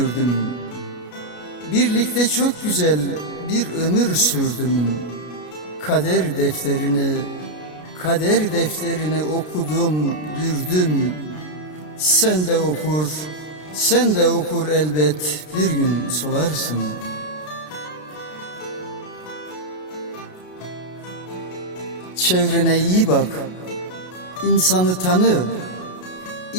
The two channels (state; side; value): late; right; 33 ms